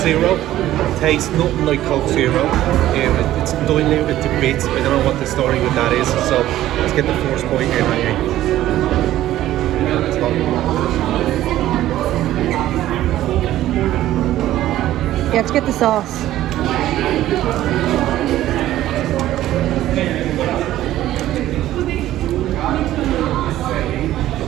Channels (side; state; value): left; quieter; 13.9 dB